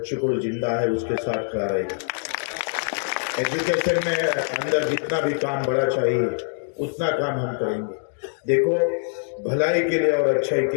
को जिंदा है उसके साथ खड़ा रहेगा। एजुकेशन में अंदर जितना भी काम बड़ा चाहिए उतना काम हम करेंगे। देखो, भलाई के लिए और अच्छाई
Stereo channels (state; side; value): silent; right; digital silence